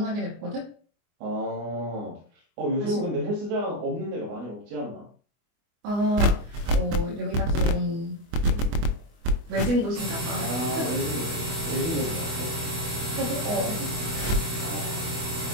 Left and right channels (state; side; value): late; left; 24 ms